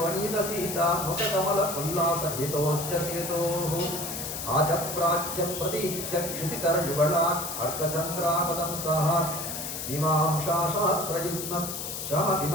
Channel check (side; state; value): left; noise; hiss, 6 dB below the sound